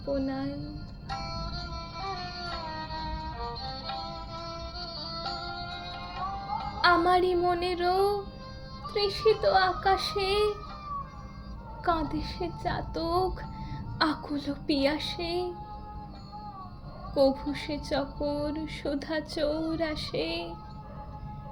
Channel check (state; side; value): identical; both; correlation 1.00